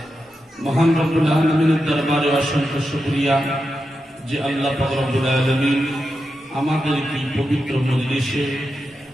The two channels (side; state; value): both; normal; correlation 0.88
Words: মহান রব্বুল আলামিনের দরবারে অসংখ্য শুকরিয়া যে আল্লাহ পাক রব্বুল আলামিন আমাদের এই পবিত্র মজলিসে